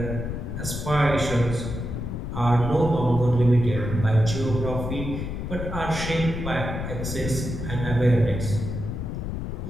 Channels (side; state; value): left; noise; rumble, 5 dB below the sound